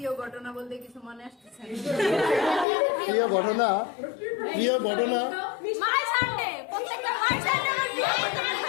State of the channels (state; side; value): drops out; right; at 2.7 s